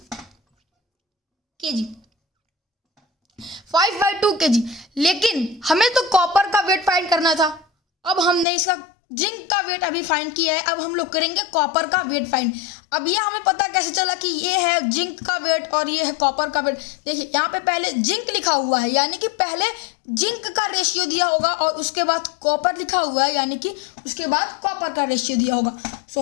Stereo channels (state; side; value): drops out; right; at 8.5 s